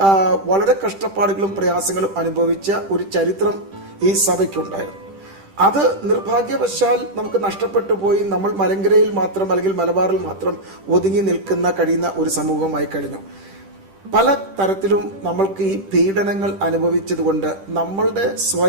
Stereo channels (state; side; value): late; left; 10 ms